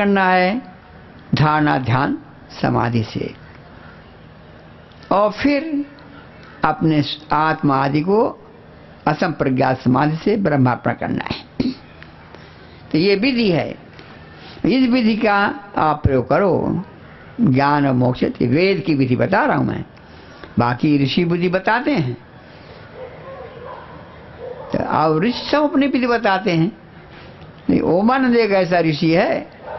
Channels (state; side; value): identical; both; correlation 1.00